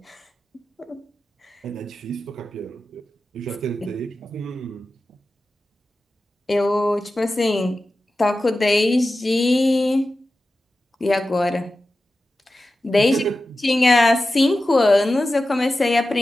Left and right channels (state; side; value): normal; both; correlation 0.93